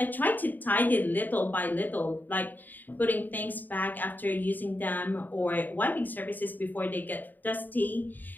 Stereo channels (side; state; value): right; late; 0.088 ms